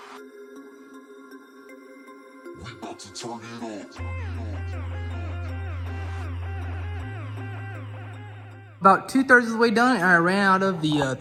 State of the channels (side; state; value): both; identical; correlation 1.00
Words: About 2/3 of the way done, and I ran out of the